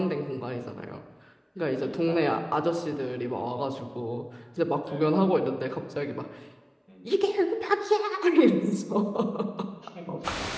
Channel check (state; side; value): identical; both; correlation 1.00